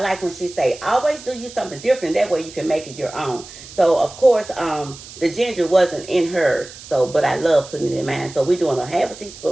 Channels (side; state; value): right; noise; hiss, 16 dB below the sound